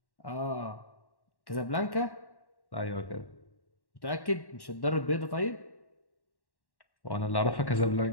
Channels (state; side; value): late; right; 1.1 ms